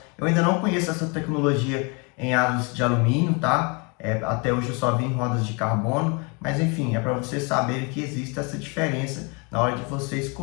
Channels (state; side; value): quieter; right; 31.7 dB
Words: Eu ainda não conheço essa tecnologia em aros de alumínio, tá? Até hoje eu só vi em rodas de carbono, mas enfim, é para vocês saberem que existe essa diferença na hora de você